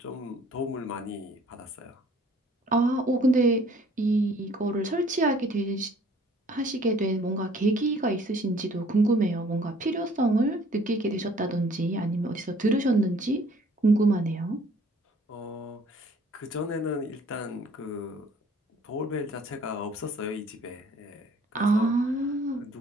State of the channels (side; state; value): both; normal; correlation 0.56